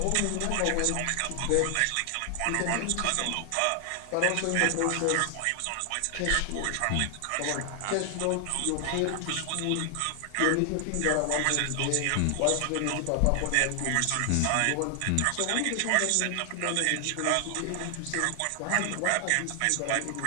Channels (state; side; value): different; both; correlation 0.00